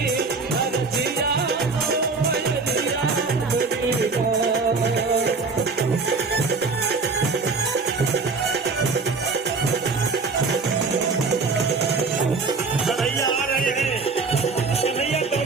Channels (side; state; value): left; quieter; 4.3 dB